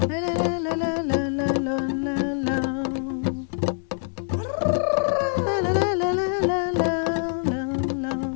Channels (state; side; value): silent; right; digital silence